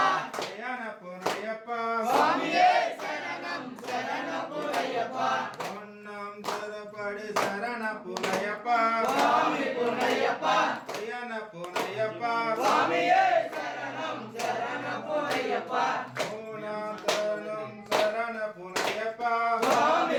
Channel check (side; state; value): both; identical; correlation 1.00